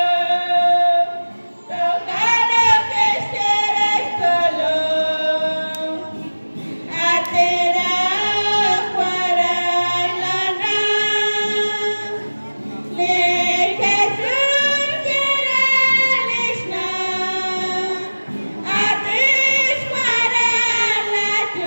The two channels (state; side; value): inverted; both; correlation -1.00